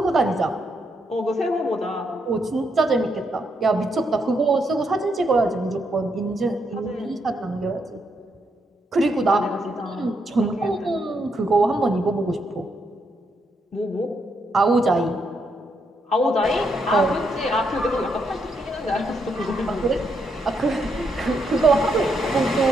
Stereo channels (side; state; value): both; normal; correlation 0.78